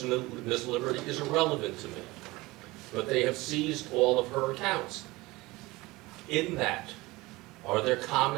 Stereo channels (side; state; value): left; quieter; 21.2 dB